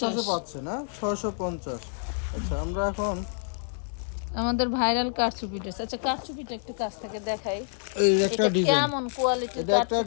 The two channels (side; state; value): right; silent; digital silence